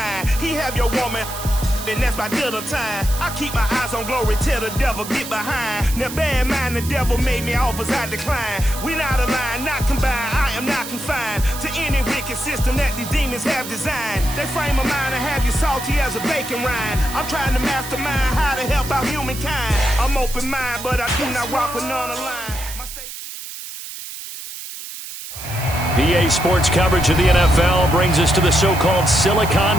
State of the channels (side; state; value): right; noise; hiss, 10 dB below the sound